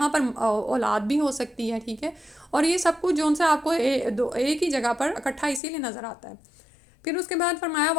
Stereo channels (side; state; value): right; drops out; at 5.6 s